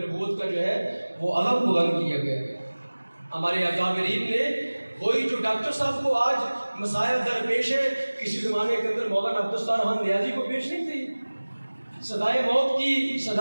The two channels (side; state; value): both; inverted; correlation -1.00